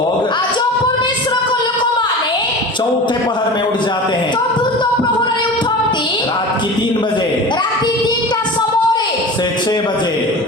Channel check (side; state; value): both; normal; correlation 0.33